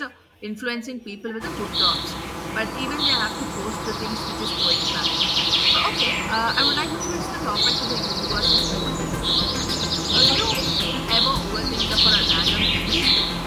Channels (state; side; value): identical; both; correlation 1.00